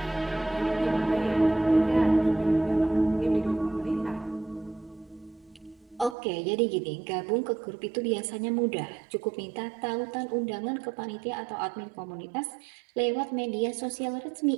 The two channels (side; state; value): left; drops out; at 6.2 s